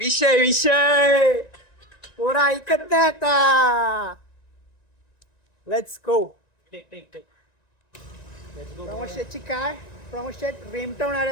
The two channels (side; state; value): right; late; 1.9 ms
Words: विषय पोरा ऐकत नाही आता. Let's go. प्रमोद शेटची कार. प्रमोद शेट रेमटवणार